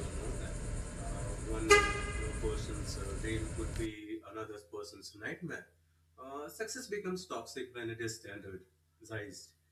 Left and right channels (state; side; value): identical; both; correlation 1.00